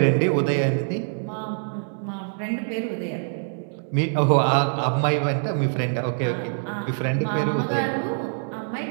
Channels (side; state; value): left; silent; 62 dB below the other